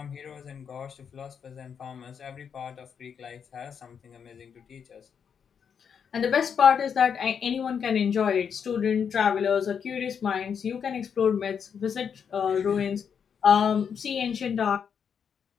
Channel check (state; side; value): quieter; right; 7.2 dB